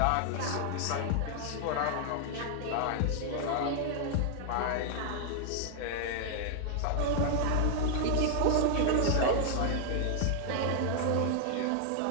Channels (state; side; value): different; both; correlation 0.00